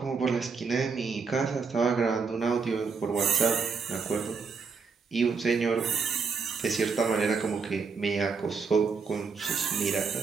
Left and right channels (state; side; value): quieter; left; 5.2 dB